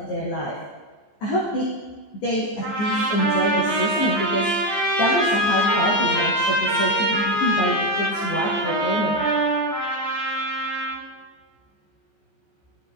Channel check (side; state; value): right; late; 14 ms